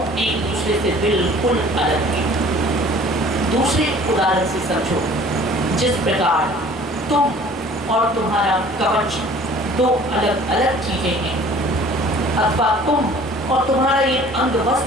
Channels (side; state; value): both; normal; correlation 0.50